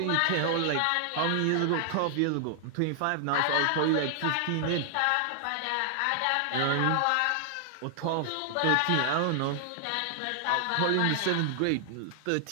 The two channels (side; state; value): both; different; correlation -0.01